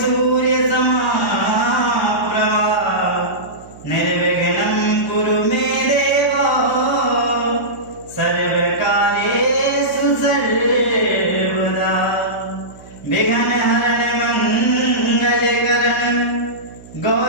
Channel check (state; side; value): noise; right; hum, 21 dB below the sound